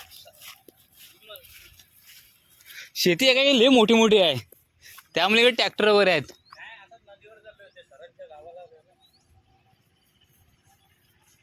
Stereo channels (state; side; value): identical; both; correlation 1.00